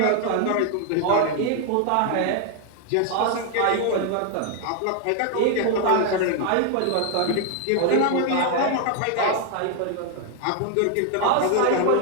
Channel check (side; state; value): both; different; correlation 0.00